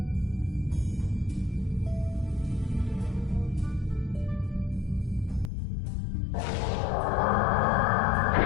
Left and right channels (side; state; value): right; drops out; at 5.5 s